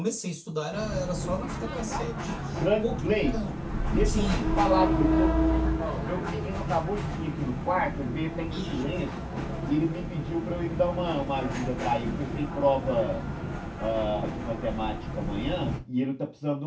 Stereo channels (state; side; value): identical; both; correlation 1.00